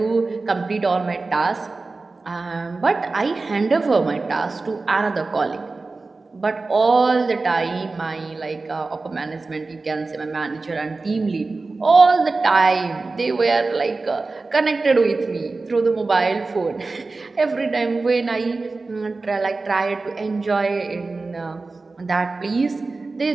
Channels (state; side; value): quieter; left; 3.7 dB